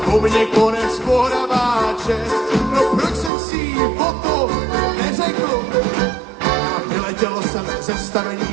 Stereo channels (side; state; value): left; drops out; at 3.3 s